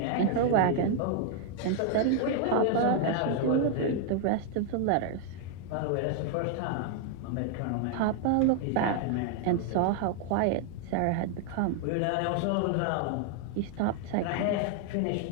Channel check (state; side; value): different; both; correlation 0.00